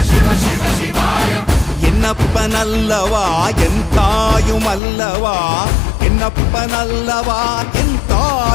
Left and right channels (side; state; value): right; drops out; at 4.8 s